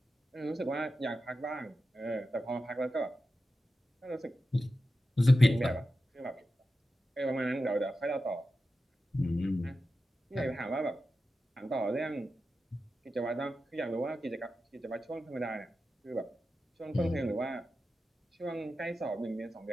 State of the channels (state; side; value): normal; both; correlation 0.91